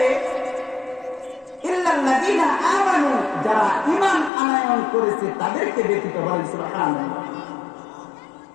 ইল্লাল্লাযীনা আমানু, যারা ঈমান আনয়ন করেছে তাদেরকে ব্যতীত। বলেন সুবহানাল্লাহ।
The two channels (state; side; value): drops out; right; at 4.3 s